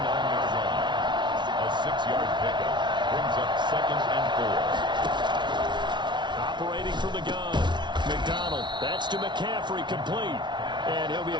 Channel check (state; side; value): late; left; 0.22 ms